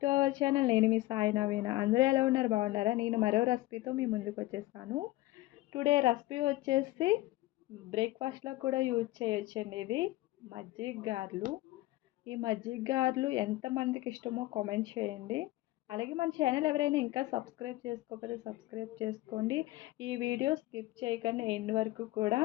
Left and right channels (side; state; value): right; quieter; 17.9 dB